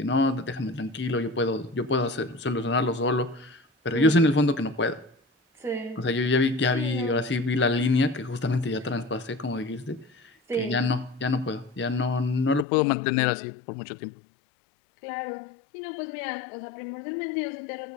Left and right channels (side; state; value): right; drops out; at 12.7 s